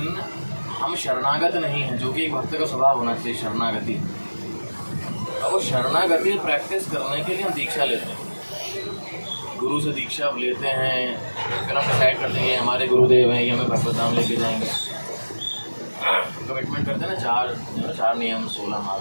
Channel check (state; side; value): inverted; both; correlation -1.00